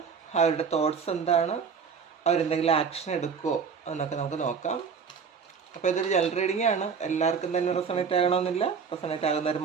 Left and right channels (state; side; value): quieter; left; 6.1 dB